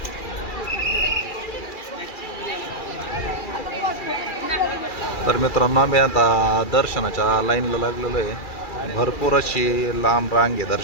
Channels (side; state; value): right; late; 2.3 ms